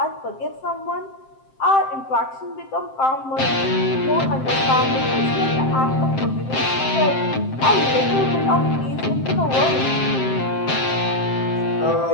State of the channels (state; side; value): late; right; 7.6 ms